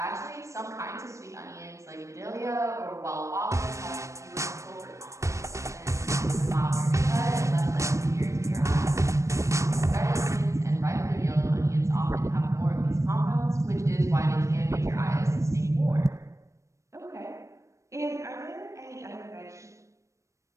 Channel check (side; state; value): left; late; 0.15 ms